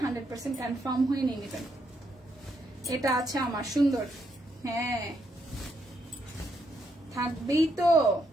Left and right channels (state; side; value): normal; both; correlation 0.77